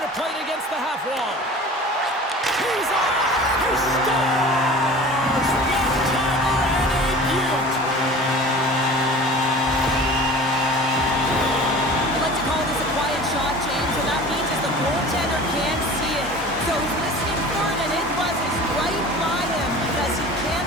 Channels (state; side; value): normal; both; correlation 0.40